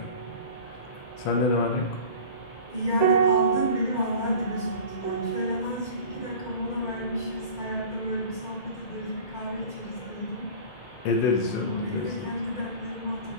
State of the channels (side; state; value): right; late; 2.1 ms